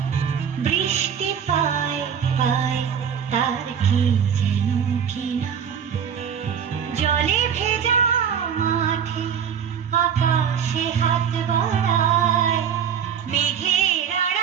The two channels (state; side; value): quieter; left; 7.8 dB